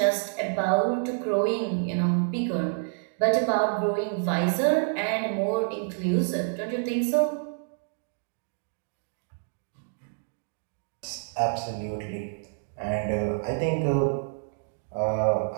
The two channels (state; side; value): silent; left; 59 dB below the other